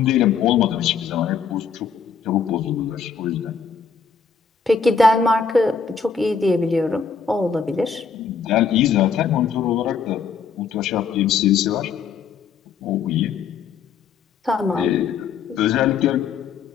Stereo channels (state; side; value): quieter; right; 6.1 dB